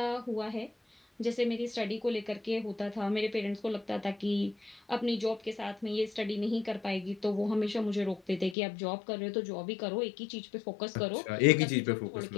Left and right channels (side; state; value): right; drops out; at 8.6 s